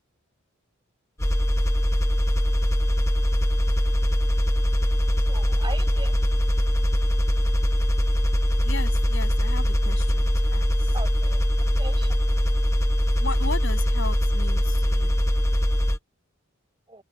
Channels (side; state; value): both; normal; correlation 0.97